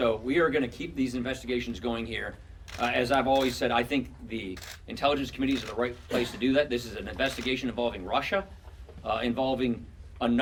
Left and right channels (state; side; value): identical; both; correlation 1.00